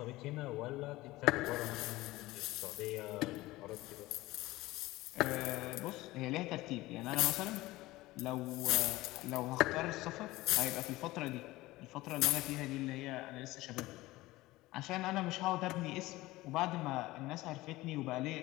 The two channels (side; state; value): right; quieter; 18.7 dB